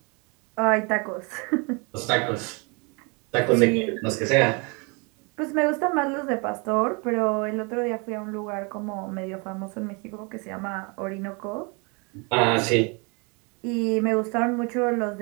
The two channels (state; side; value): quieter; left; 31.5 dB